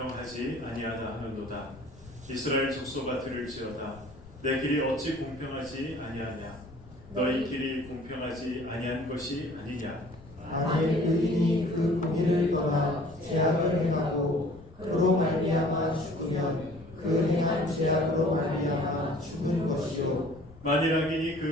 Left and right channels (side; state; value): left; noise; rumble, 21 dB below the sound